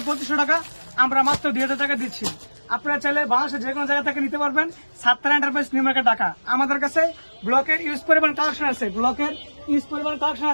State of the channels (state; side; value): inverted; both; correlation -1.00